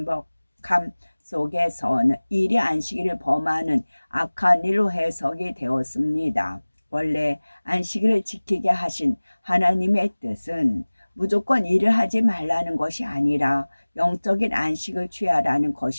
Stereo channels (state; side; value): inverted; both; correlation -1.00